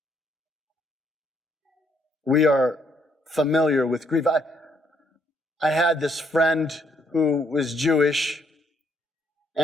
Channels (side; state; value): both; normal; correlation 0.71